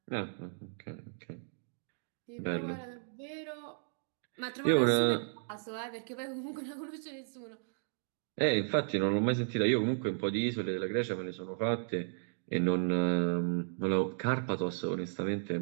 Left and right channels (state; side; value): silent; left; digital silence